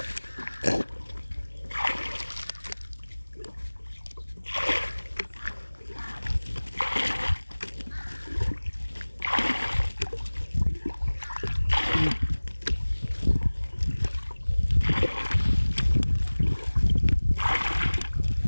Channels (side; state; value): both; inverted; correlation -1.00